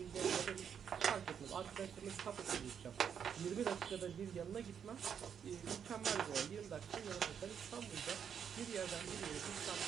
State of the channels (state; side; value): quieter; left; 7.8 dB